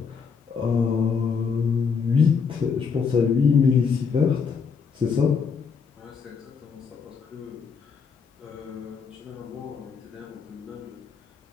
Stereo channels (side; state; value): right; quieter; 5.8 dB